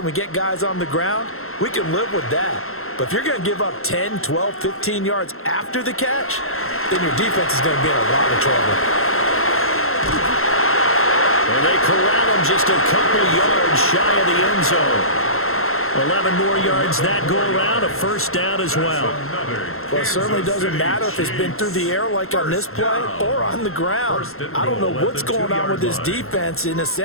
we get guys on the ground, we can live with that. But if you're going to give up 10, 12, 15 yards after the catch, then your defense is going to be in a lot of trouble. And they corral him just a couple yards shy of the end zone. 11 more yards that go around, a first down as well. Well, it certainly doesn't matter if it's been through the air like on this play or on the ground. I don't know what's going on with this defense. In a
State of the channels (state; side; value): late; right; 0.62 ms